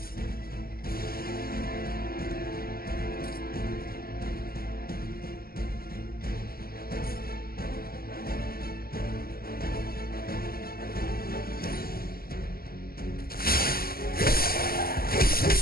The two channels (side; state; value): right; late; 0.44 ms